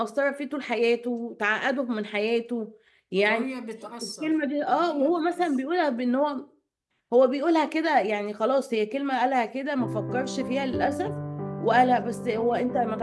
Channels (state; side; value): identical; both; correlation 1.00